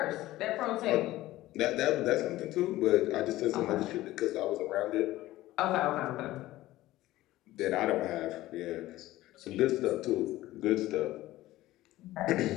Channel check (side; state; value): right; quieter; 16.3 dB